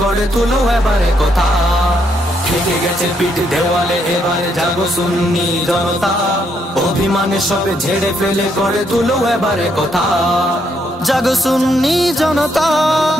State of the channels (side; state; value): both; normal; correlation 0.75